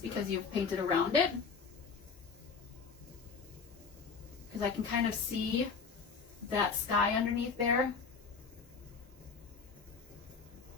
you've painted around it. Because I can kind of see that sky underneath there.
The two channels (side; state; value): right; quieter; 5.3 dB